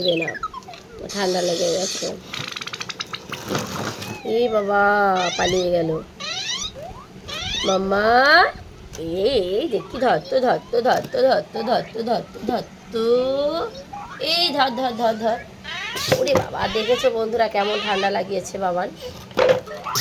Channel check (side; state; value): both; identical; correlation 1.00